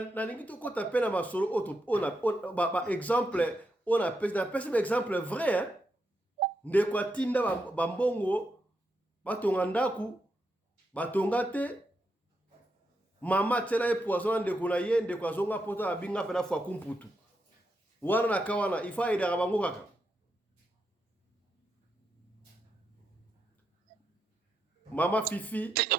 lingi to kota pena masolo on ba exemple on a pesa exemple vrai hein ndeko atinda ba mbongo batonga ndaku batonga te mama tela e poison ndeko na ye ndeko azonga pota abinga pena fwa kumputu wana na kawana ifa ida bango kaka mama Fifi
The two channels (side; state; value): both; normal; correlation 0.83